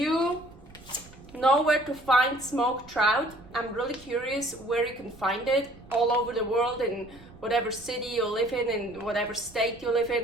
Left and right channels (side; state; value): right; noise; rumble, 22 dB below the sound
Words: know where to find smoked trout, I'm really curious where you can find it all over the world, in whatever city you live in whatever state you live